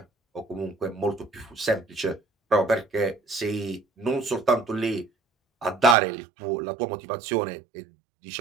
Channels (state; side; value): drops out; left; at 6.0 s